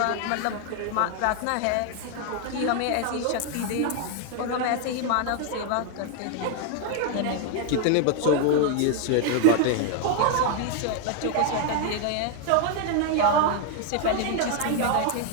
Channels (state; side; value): different; both; correlation 0.00